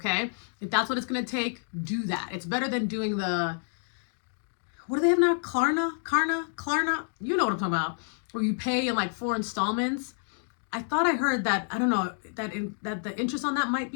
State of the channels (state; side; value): silent; right; digital silence